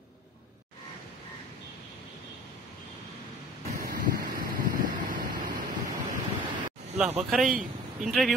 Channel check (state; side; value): normal; both; correlation 0.45